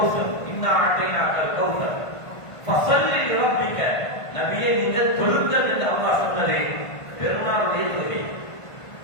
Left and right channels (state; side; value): late; right; 1.5 ms